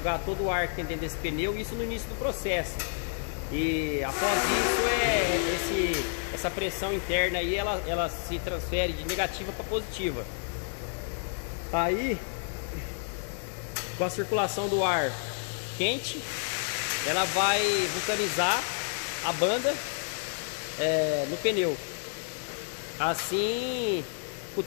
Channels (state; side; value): silent; right; 58 dB below the other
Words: o ar que tem dentro desse pneu, isso no início do processo. E após isso, essa pressão interna aí, ela se transfere de negativa para positiva. Aí, com a circulação do ar quente, ela vai vulcanizar a banda no pneu. Assim, o